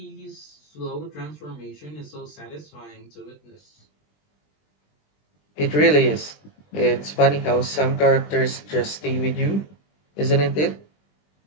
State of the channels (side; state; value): right; late; 20 ms